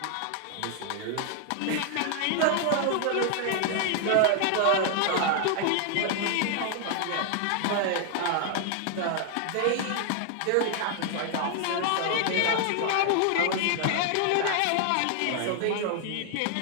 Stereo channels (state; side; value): different; both; correlation 0.00